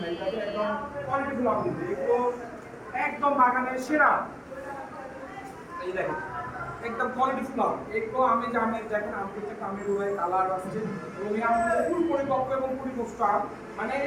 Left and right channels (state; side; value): identical; both; correlation 1.00